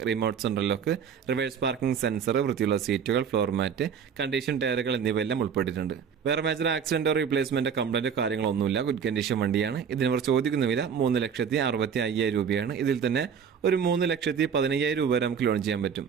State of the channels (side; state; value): left; quieter; 7.1 dB